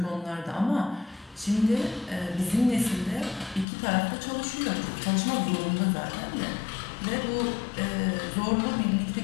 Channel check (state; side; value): drops out; right; at 3.7 s